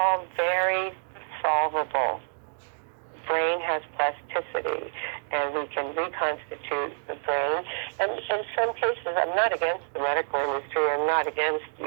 very solvable. Brain has plasticity, and we can reconstitute the brain. And in some cases, I'm not against the medical industry. I'm not against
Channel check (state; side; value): silent; left; digital silence